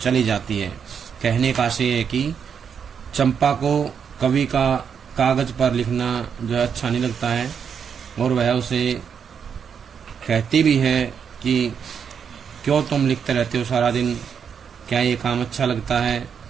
जाती है। कहने का आशय है कि चंपा को कवि का कागज पर लिखना जो अच्छा नहीं लगता है और वह उसे कहती भी है कि क्यों तुम लिखते रहते हो सारा दिन, क्या ये काम अच्छा लगता है?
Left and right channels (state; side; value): quieter; left; 7.2 dB